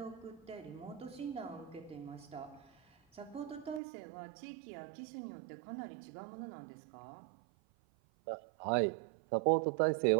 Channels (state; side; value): drops out; left; at 3.8 s